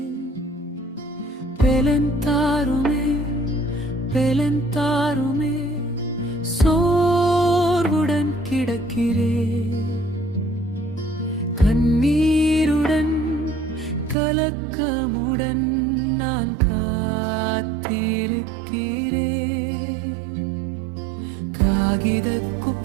பெலந்தாருமே பெலந்தாருமே சோர்வுடன் கிடக்கிறேன், கண்ணீருடன் கலக்கமுடன் நான் காத்திருக்கிறேன். காகித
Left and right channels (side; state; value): left; drops out; at 14.2 s